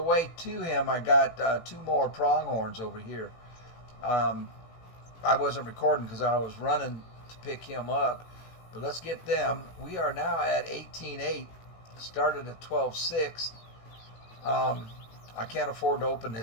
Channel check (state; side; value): late; right; 18 ms